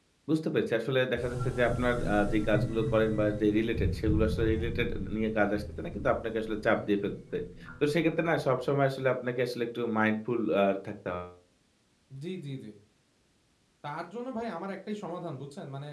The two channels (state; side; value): identical; both; correlation 1.00